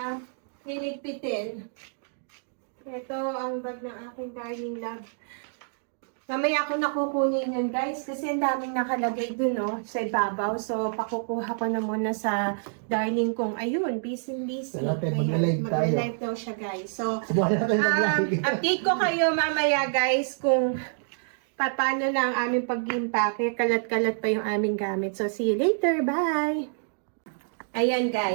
niligpitin. Ito ang bag ng aking darling love. Mamaya ako nakukunin yun, guys, kasi ang daming nakalagay dun, no, sa ibabaw. So, pakukuha ko na muna sa darling kong, ayun, busy. Mag-live daw siya, guys. So, update ko kayo mamaya, guys, kung paano na ang aming pag-impake. Kalat-kalat pa yung aming gamit. So, see you later. Bye! Ayan,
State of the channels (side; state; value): left; silent; digital silence